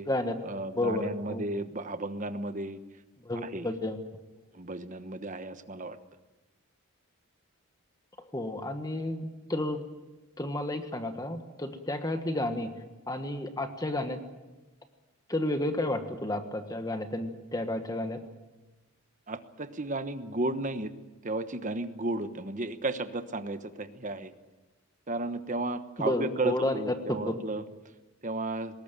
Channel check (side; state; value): both; normal; correlation 0.47